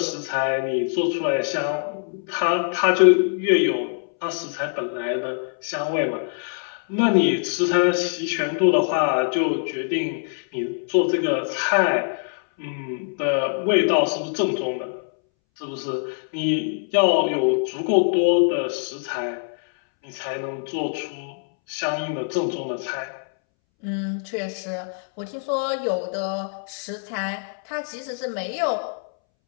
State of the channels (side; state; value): right; silent; 63 dB below the other